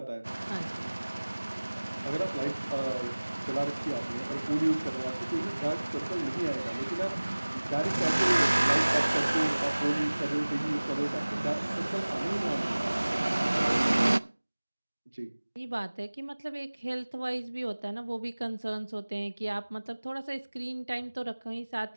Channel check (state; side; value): inverted; both; correlation -1.00